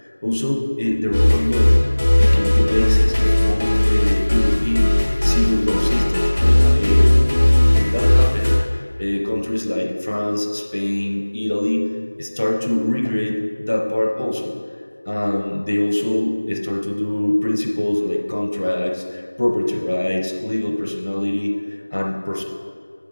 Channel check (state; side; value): inverted; both; correlation -1.00